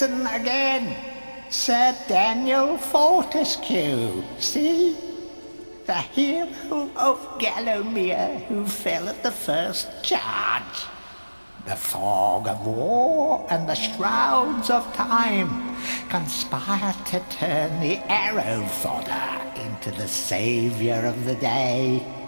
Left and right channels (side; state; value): both; inverted; correlation -1.00